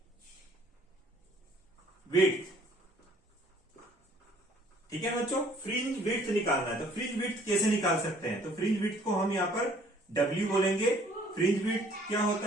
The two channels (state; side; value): normal; both; correlation 0.58